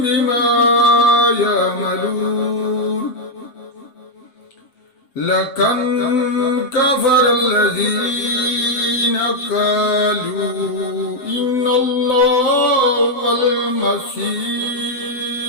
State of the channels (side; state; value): right; late; 7.4 ms